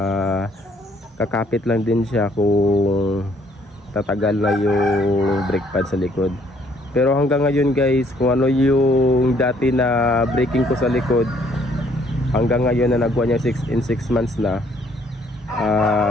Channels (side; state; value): both; normal; correlation 0.64